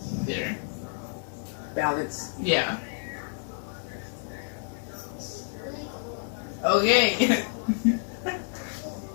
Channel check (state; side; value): silent; right; digital silence